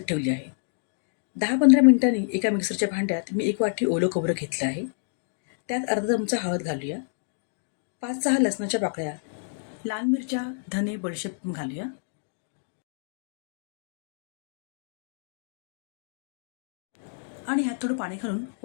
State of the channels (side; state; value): right; silent; digital silence